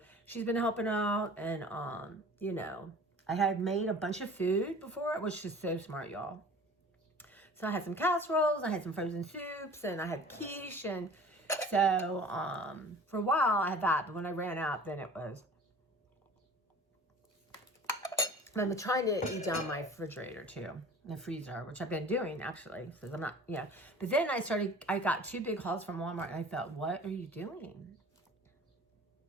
she's been helping out. And, you know, I had made a bunch of food before. It was just so smart, y'all. So I had some casseroles, I had some frozen soups, and I had quiche. And so for a while I had that. But when I ran out, then it was... I'm trying to eat down my refrigerator too, the freezer, which I've been doing actually, because I'm not, yeah. But then I got 2 big hauls from Walmart, and I thought, what are you doing?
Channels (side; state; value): both; normal; correlation 0.44